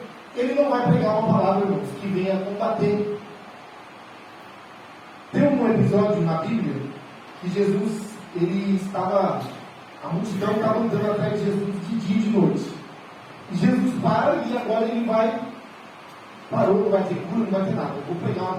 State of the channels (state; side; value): identical; both; correlation 1.00